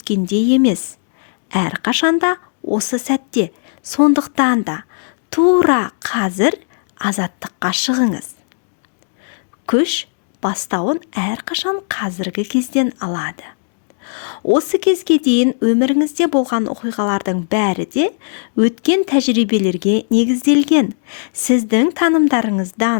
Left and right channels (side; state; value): right; silent; digital silence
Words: емес. Әрқашанда осы сәтте, сондықтан да тура қазір азаттыққа шығыңыз. Күш бастауын әрқашан қазіргі кезден алады. Осы кезге дейін өміріңізде болған оқиғалардың бәрі де өткен тәжірибелерге негізделген. Сіздің